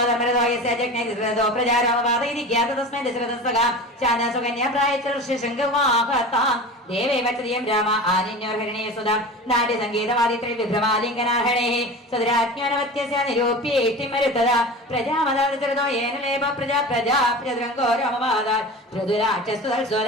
ജഗ്നേ ധൃതോ പ്രജാരോമവാദൈരിക്യാത തസ്മൈ ദശരഥസ്തകാ ശാനാസുകന്യാ പ്രായച്ചർഷശങ്കവാഹതാം ദേവേ വചതിയം രാമ ആനിന്യോർഹരണേ സുധാം നാട്യ സംഗീതവാദിത്രേ വിഭ്രമാലിംഗനാഹരണേ സദരാജ്ഞാനവത്യസ്യ നിരൂപ്യേഷ്ടിമരുത്തദാ പ്രജാമദാദൃതോ യേന ലേപ പ്രജാ പ്രജാ പ്രജദ്രംഗോ രാമവാദാ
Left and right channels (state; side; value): normal; both; correlation 0.33